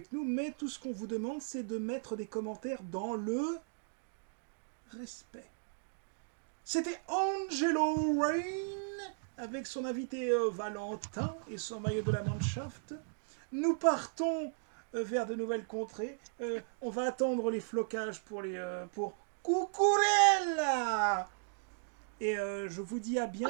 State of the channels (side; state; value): left; silent; digital silence